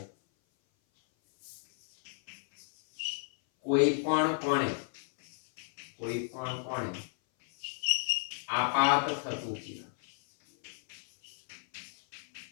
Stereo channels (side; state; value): right; silent; 56 dB below the other